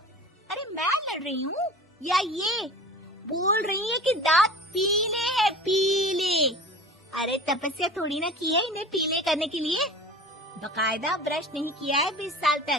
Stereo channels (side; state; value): both; normal; correlation 0.39